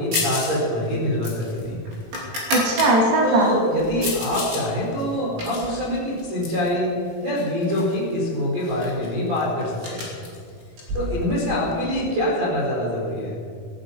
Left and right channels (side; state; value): left; late; 17 ms